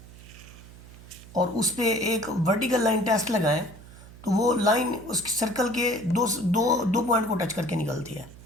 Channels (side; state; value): right; noise; hum, 19 dB below the sound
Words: और उस पर एक वर्टिकल लाइन टेस्ट लगाएं तो वो लाइन उस सर्कल के दो पॉइंट को टच करके निकलती है।